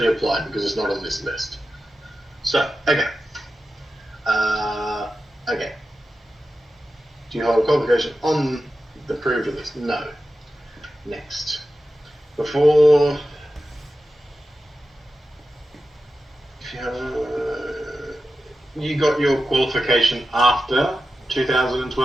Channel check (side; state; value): both; normal; correlation 0.92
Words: apply because it's not on this list. So okay. Okay. Do you hold a qualification on the approved list? No. Next. Before. You got your qualification after